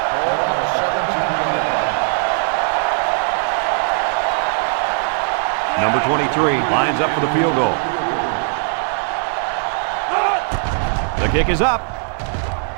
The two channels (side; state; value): left; silent; 63 dB below the other